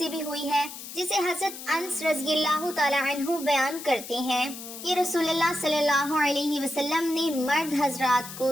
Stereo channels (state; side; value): noise; left; hiss, 12 dB below the sound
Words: بھی ہوئی ہے جسے حضرت انس رضی اللہ تعالی عنہ بیان کرتے ہیں کہ رسول اللہ صلی اللہ علیہ وسلم نے مرد حضرات کو